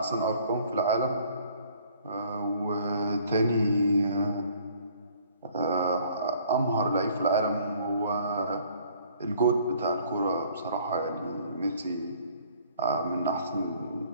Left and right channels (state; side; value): inverted; both; correlation -0.58